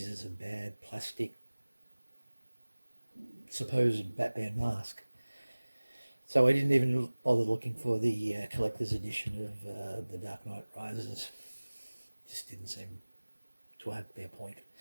a bad plastic supposed Batman mask. So I didn't even bother looking for the collector's edition of The Dark Knight Rises. Just didn't seem to have their point.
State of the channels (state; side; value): inverted; both; correlation -1.00